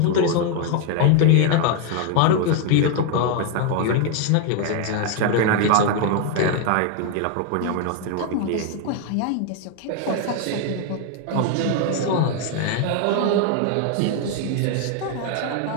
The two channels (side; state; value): both; different; correlation 0.01